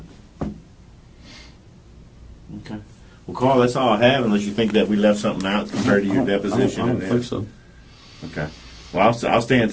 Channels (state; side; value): identical; both; correlation 1.00